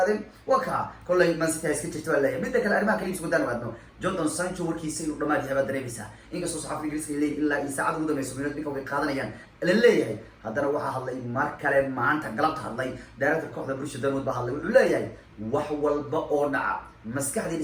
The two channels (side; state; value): both; identical; correlation 1.00